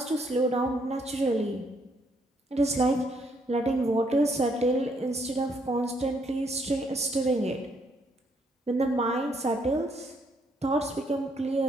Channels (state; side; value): normal; both; correlation 0.71